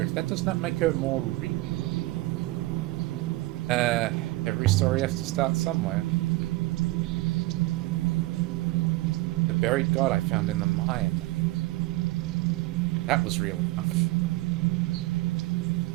that does not make her more real. Every story has to start somewhere. The buried god I found in the mine. That was real enough.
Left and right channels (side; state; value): left; quieter; 20.1 dB